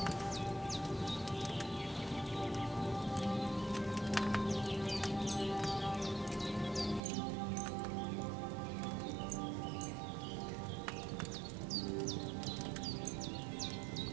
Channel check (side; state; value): left; drops out; at 7.0 s